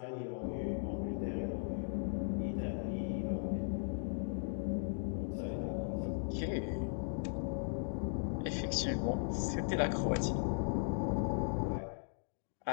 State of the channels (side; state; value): right; silent; digital silence